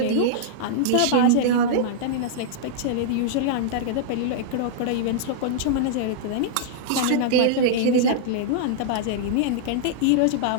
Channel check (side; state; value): both; different; correlation -0.02